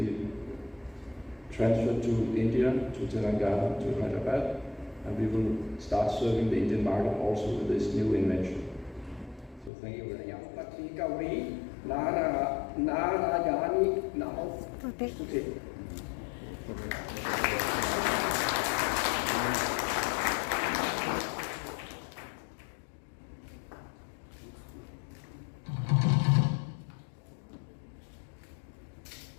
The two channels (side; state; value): right; drops out; at 9.7 s